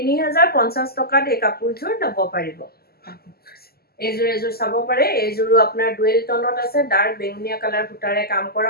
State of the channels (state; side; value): late; right; 0.45 ms